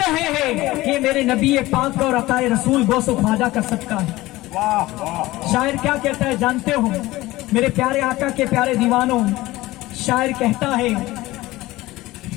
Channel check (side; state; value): right; quieter; 18.3 dB